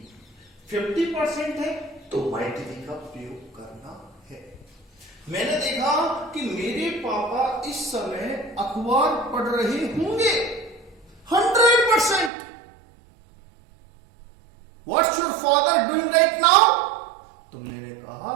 50% है तो माइट बी का प्रयोग करना है। मैंने देखा कि मेरे पापा इस समय अखबार पढ़ रहे होंगे। 100%। What's your father doing right now? तो मैंने कहा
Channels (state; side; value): drops out; left; at 12.3 s